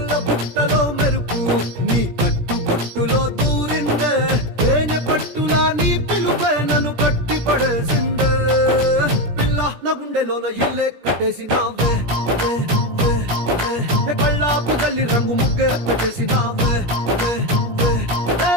బుట్టలో మెరుపు నీ కట్టు బొట్టులో దూరిందే తేనె పట్టులా నీ పిలుపే నన్ను కట్టి పడేసిందే పిల్ల నా గుండెలోన ఇల్లే కట్టేసినావే కళ్ళాపు గల్లి రంగు ముగ్గే పెట్టేసినావే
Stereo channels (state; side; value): late; left; 17 ms